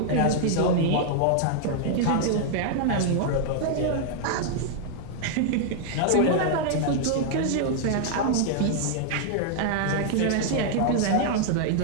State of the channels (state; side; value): different; both; correlation -0.01